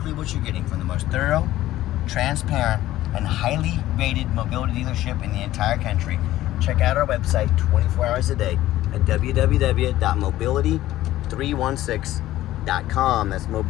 what you're getting from the most thorough, transparent, and highly rated mobility dealership in the entire country. Check out our website 24 hours a day at www.mobility316.com. That's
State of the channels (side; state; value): right; quieter; 14.9 dB